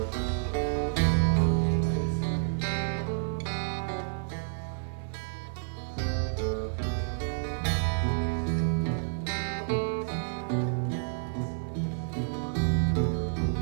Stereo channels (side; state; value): left; silent; 58 dB below the other